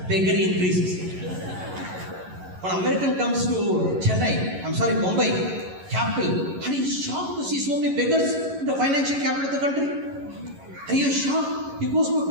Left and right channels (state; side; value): late; left; 11 ms